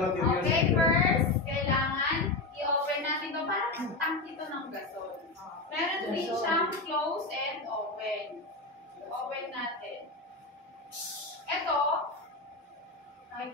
Okay, first, kailangan i-open natin ito para tank ito ng gasol. Meron din siyang close and open. Open natin. Ito, kahit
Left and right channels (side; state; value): right; quieter; 3.3 dB